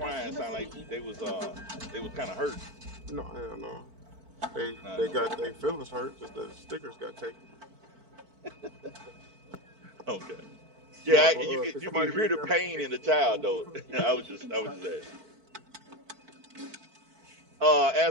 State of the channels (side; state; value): left; late; 4.5 ms